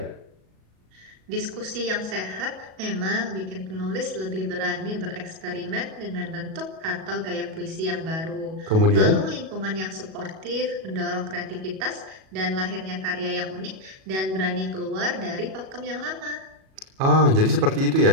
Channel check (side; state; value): left; late; 37 ms